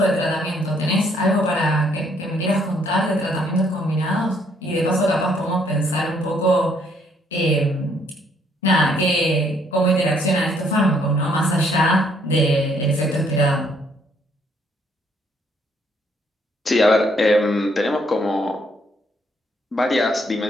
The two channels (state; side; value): normal; both; correlation 0.68